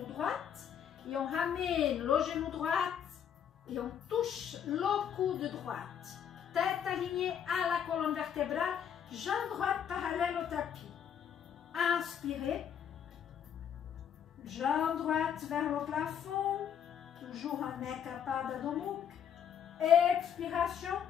droit. Et on ramène le genou droit. Et on touche le coude droite. Tête alignée à la colonne vertébrale. Jambe droite parallèle au tapis. Inspirez. Jambe droite vers le plafond. Toujours en Ekapada Adho Mukha. Expiration.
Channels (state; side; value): quieter; right; 8.6 dB